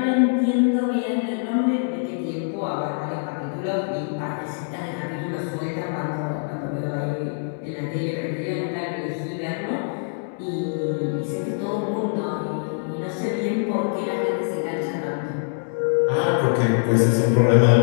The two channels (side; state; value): right; silent; digital silence